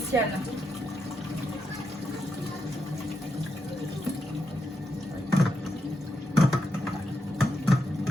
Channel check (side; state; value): both; normal; correlation 0.83